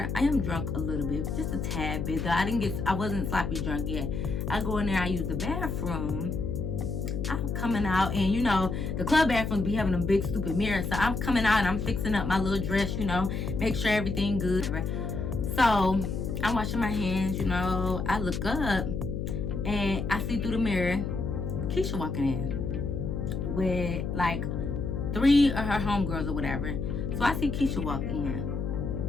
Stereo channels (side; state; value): left; noise; hum, 3 dB below the sound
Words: I am drunk a little bit, just a tad bit. Though I wasn't sloppy drunk yet. I go in there, I use the bathroom. I'm coming out, and you know, the club bathrooms be having a big stupid mirror. So I'm coming out and I'm fixing up my little dress, you know, make sure everything good. So I'm washing my hands, you know. I look up and I see through the mirror Keisha walking in with like 3 of her homegirls or whatever. So I see Keisha walk in,